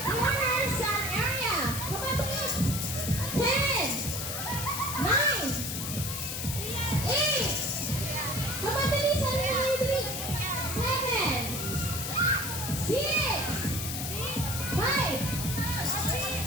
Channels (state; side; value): noise; left; hiss, 4 dB below the sound